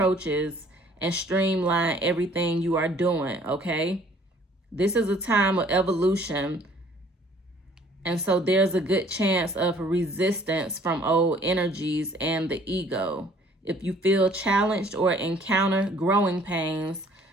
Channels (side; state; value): both; normal; correlation 0.57